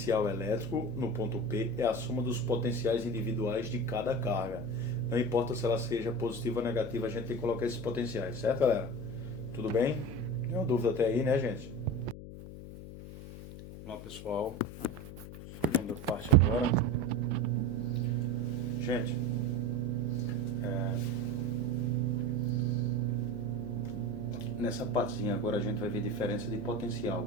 elétrico no ponto P é a soma dos potenciais individuais de cada carga. Não importa se ela seja positiva ou negativa, a gente tem que colocar esses potenciais, certo, galera? Tudo bem? Nenhuma dúvida até aí, né, gente? Vamos lá, pessoal. Segunda parte agora. Gente, nessa partezinha agora a gente vai ver diferença de potencial,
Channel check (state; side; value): noise; left; hum, 12 dB below the sound